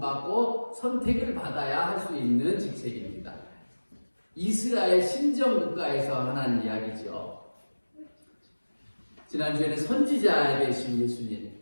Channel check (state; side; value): inverted; both; correlation -1.00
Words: 선택을 받아야 할 수 있는 직책입니다. 이스라엘 신정 국가에서 하는 이야기죠. 지난주에는 선지자 되신 예수님,